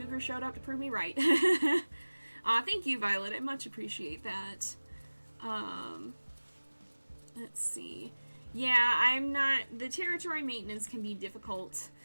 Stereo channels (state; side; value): inverted; both; correlation -1.00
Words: showed up to prove me right. Thank you, Violet. I much appreciate that. Let's see. Yeah, I'm not... The territory maintenance can be difficult.